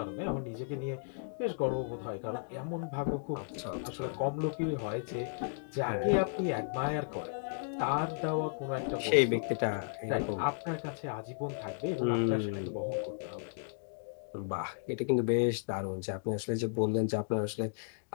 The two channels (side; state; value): right; silent; digital silence